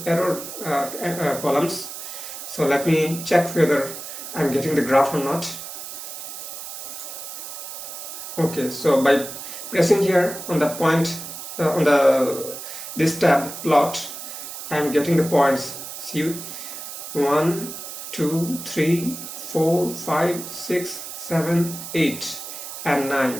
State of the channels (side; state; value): right; noise; hiss, 9 dB below the sound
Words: error columns. So let me check whether I am getting the graph or not. Okay, so by pressing here on the point on this tab plot, I am getting the points. See, 1, 2, 3, 4, 5, 6, 7, 8 and